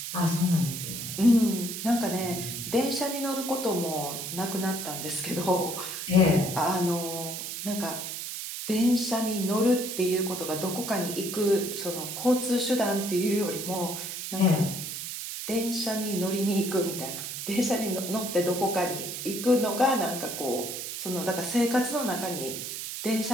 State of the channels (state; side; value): noise; right; hiss, 6 dB below the sound